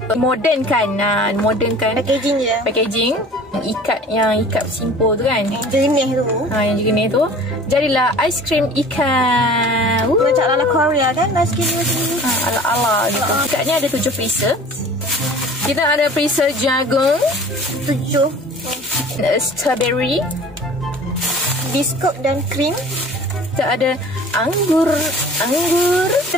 modernkan. Modernkan packaging je. Packaging yang ikat simple tu kan. Yang jernih tu. Yang jernih tu. Jadilah aiskrim ikan. Macam ala Korea kan aiskrim macam ni. Ala-ala gitu. Ikatnya ada 7 freezer. Kita ada freezer jagung 7, strawberry, biskut dan krim. kita ada anggur,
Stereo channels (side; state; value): both; normal; correlation 0.45